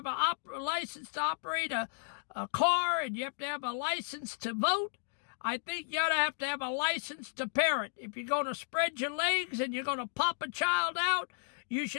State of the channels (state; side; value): silent; right; digital silence